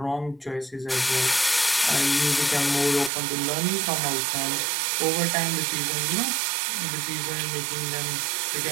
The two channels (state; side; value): drops out; left; at 3.1 s